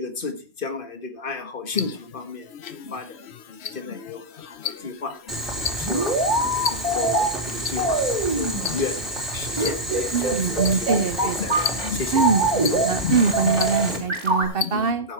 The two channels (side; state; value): both; normal; correlation -0.09